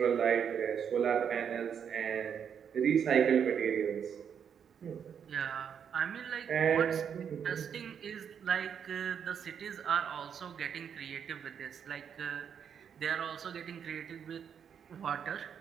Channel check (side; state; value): left; quieter; 7.8 dB